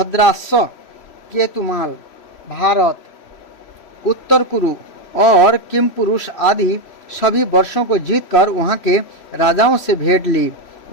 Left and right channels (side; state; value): right; late; 3.0 ms